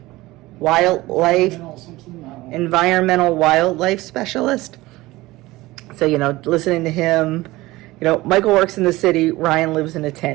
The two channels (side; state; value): left; quieter; 19.1 dB